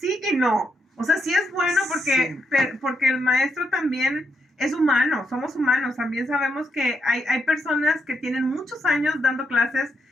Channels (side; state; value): both; normal; correlation 0.80